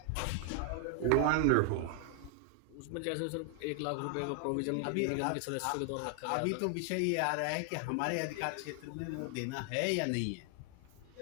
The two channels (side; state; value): both; different; correlation 0.00